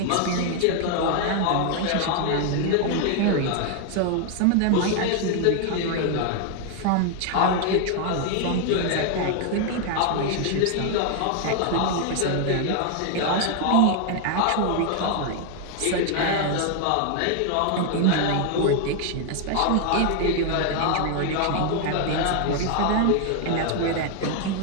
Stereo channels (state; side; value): different; both; correlation 0.00